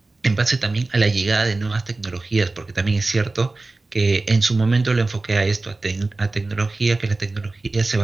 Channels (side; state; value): left; quieter; 3.3 dB